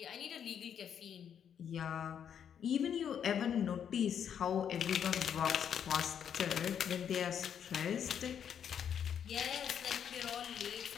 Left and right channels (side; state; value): right; quieter; 8.5 dB